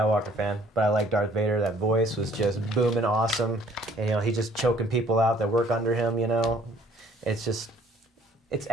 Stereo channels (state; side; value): normal; both; correlation 0.58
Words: fan, but I like Darth Vader. That voice was just booming awesome, and he's just choking people out that work under him. It's